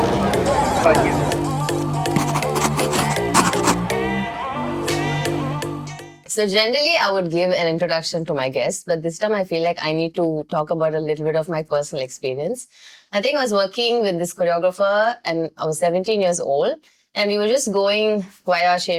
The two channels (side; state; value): both; identical; correlation 1.00